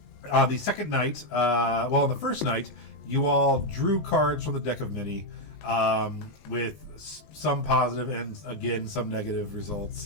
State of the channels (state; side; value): late; right; 20 ms